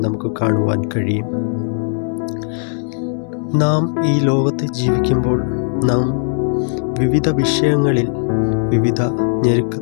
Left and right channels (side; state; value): right; silent; 68 dB below the other